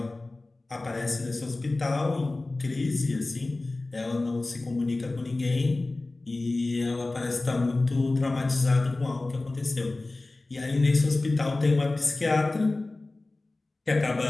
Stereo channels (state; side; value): quieter; right; 3.1 dB